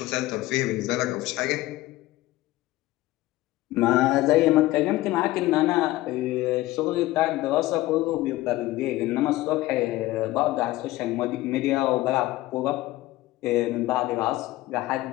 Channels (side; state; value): right; quieter; 17.4 dB